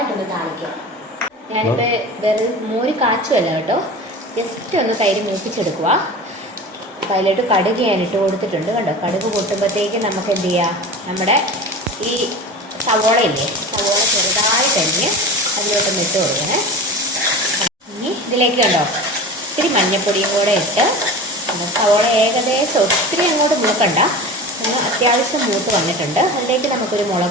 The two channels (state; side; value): normal; both; correlation 0.33